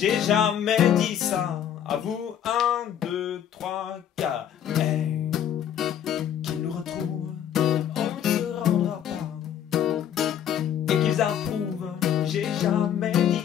jamais dit ça. À vous, 1, 2, 3, 4. Qu'ils nous retrouvent, on ne se rendra pas. Et qu'ils approuvent, j'ai jamais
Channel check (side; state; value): right; quieter; 9.6 dB